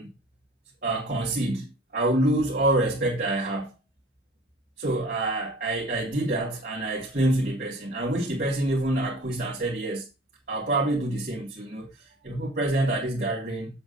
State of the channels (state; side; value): normal; both; correlation 0.45